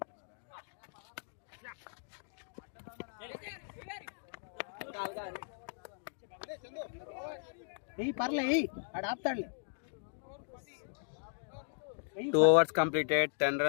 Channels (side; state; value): right; silent; digital silence